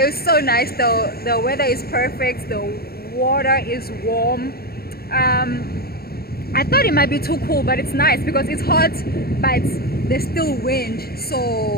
it's so nice though. The weather is perfect. The water is warm. I thought it might be too cool, but it's nice because it's hot, but there's still wind.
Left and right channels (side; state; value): right; late; 0.45 ms